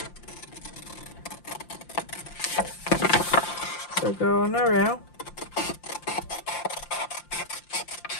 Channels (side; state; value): right; late; 5.7 ms